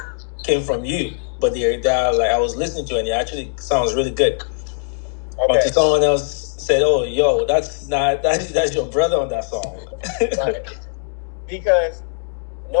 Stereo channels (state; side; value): silent; right; digital silence